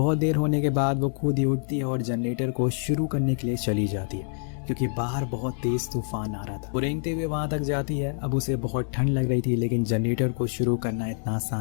देर होने के बाद वो खुद ही उठती है और जनरेटर को शुरू करने के लिए चली जाती है क्योंकि बाहर बहुत तेज तूफान आ रहा था। वो रेंगते हुए वहां तक जाती है। अब उसे बहुत ठंड लग रही थी लेकिन जनरेटर को शुरू करना इतना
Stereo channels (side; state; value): right; silent; digital silence